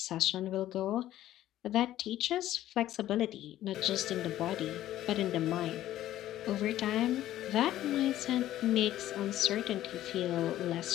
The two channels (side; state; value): right; quieter; 13.5 dB